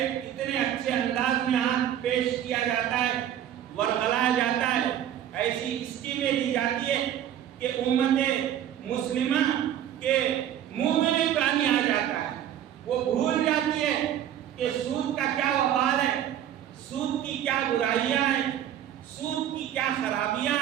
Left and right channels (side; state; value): left; quieter; 10.7 dB